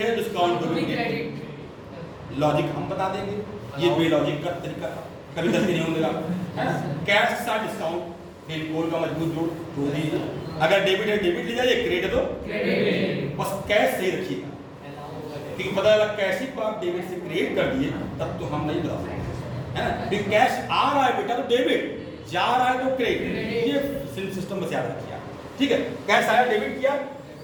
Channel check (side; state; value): both; identical; correlation 1.00